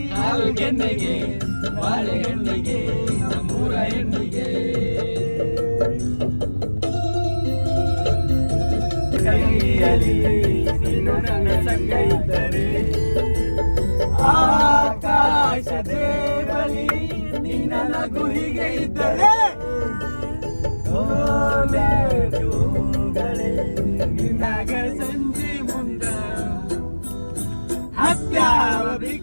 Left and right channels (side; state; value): both; inverted; correlation -1.00